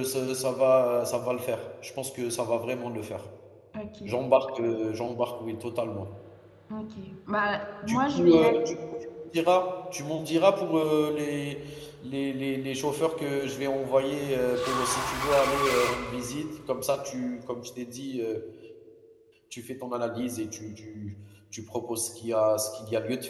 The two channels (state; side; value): identical; both; correlation 1.00